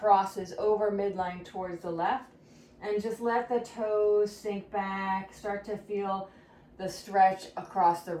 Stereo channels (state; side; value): identical; both; correlation 1.00